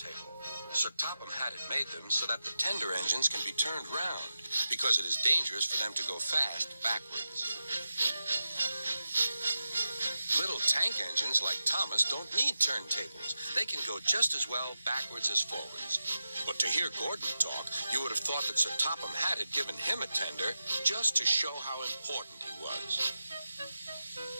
Sir Topham Hatt had made them so that the tender engines can be turned round, because it is dangerous for them to go fast backwards. Little tank engines like Thomas don't need turntables. They can go just as well backwards as forwards. But to hear Gordon talk, you would have thought that Sir Topham Hatt had given him a tender just to show how important he was.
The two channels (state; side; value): inverted; both; correlation -0.91